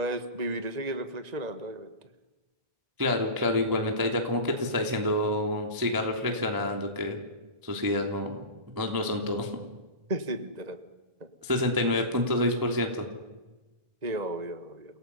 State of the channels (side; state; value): left; late; 1.0 ms